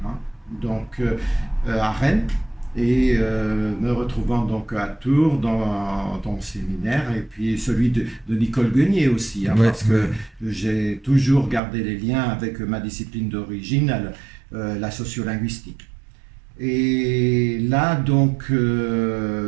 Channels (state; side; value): drops out; left; at 11.6 s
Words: hein, à Rennes, et me retrouvant donc à Tours dans ton séminaire, et puis celui de Nicole Guenier aussi, hein, Ouais, parce ouais. que j'ai toujours gardé les liens avec ma discipline d'origine, la sociolinguistique. Et là,